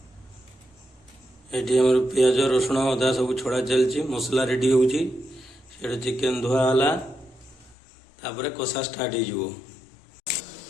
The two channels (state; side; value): drops out; right; at 7.8 s